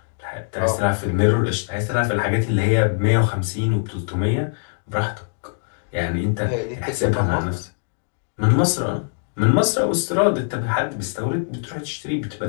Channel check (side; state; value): right; silent; digital silence